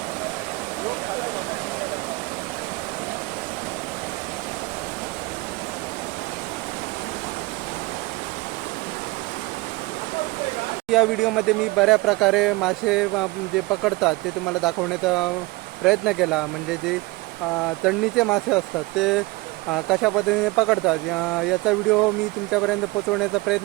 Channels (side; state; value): left; quieter; 22.7 dB